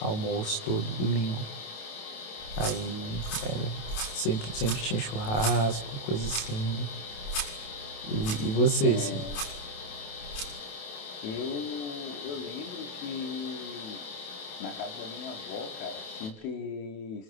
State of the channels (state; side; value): late; right; 28 ms